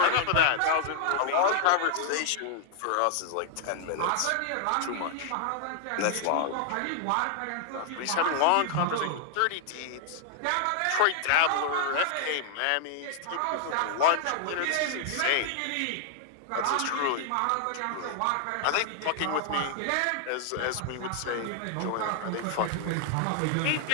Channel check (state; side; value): different; both; correlation 0.00